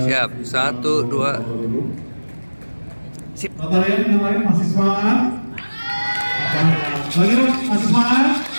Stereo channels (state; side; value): inverted; both; correlation -1.00